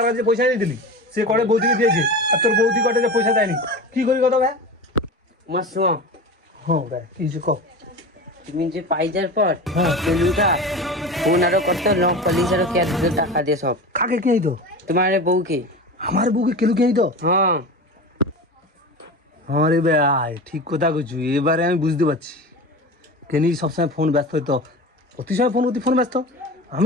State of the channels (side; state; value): both; normal; correlation 0.30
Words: যে পয়সা দিয়ে দিলি, সে করে বৌদিকে দিয়েছে, আর তোর বৌদি কটে যে পয়সা দেয়নি, কি করি কথা ভাই? তোমার শোনো, হ্যাঁ ভাই কি কিছু কও। তুমি যে পাইজার পর গেলুটা ফোন আরো করতে, লক পুলিশ আরো কে টাকা দিয়ে সব। কাকে কে আইতো? তোমার বউকে। আমার বউকে কেলু কে আইতো? হ্যাঁ আরে ভাই ঠিক কথা কইছু, এবারে আমি বুঝতে পারছি কেনি সবসময় ফোন ব্যস্ত হইতো, প্রতি সময় ফোন ব্যস্ত,